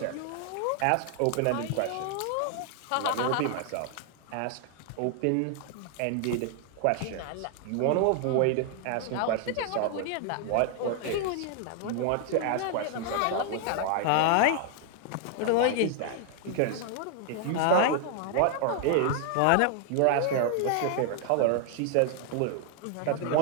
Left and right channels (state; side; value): different; both; correlation 0.00